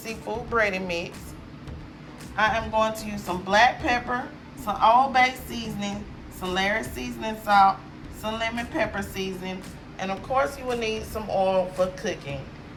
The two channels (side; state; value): both; identical; correlation 1.00